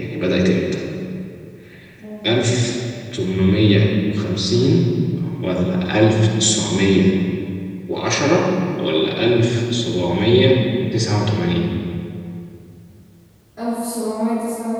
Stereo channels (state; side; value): identical; both; correlation 1.00